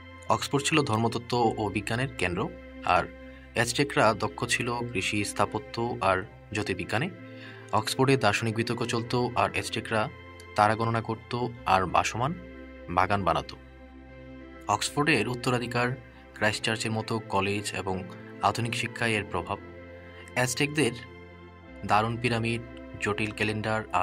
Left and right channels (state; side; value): identical; both; correlation 1.00